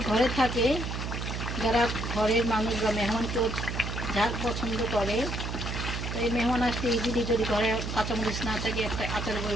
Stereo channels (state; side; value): noise; right; hum, 4 dB below the sound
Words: ঘরে থাকে, যারা ঘরের মানুষ বা মেহমান কেউ ঝাল পছন্দ করে, তো এই মেহমান আসতে ইজিলি যদি ঘরে কাঁচামরিচ না থাকে, একটা